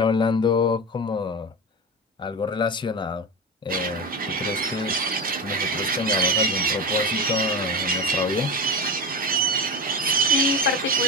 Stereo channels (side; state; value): both; normal; correlation 0.23